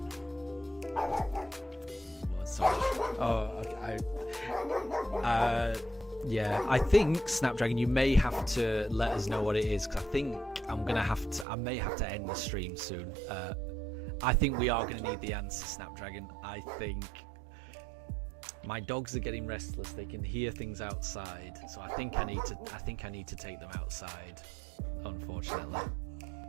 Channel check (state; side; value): drops out; left; at 11.5 s